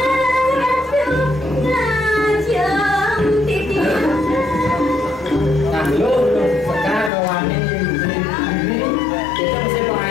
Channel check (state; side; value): drops out; right; at 7.1 s